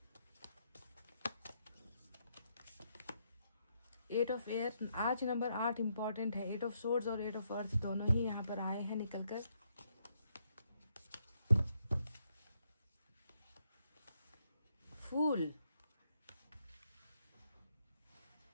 eight of air. आज नंबर 8 इंपॉर्टेंट है। 8 ऑफ सोर्ड्स और 8 ऑफ अर्थ दोनों ही यहाँ पर आए हैं निकल कर। फूल,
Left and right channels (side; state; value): both; inverted; correlation -0.77